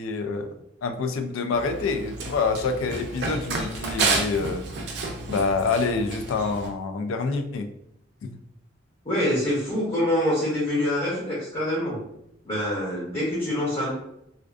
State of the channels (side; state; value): both; normal; correlation 0.28